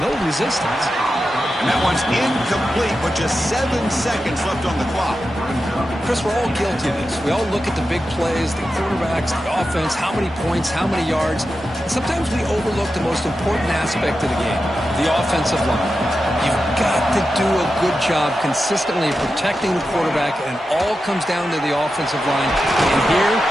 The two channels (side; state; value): both; normal; correlation 0.90